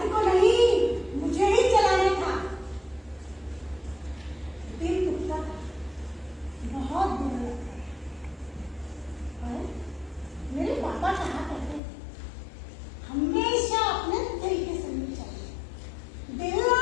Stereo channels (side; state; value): right; drops out; at 11.8 s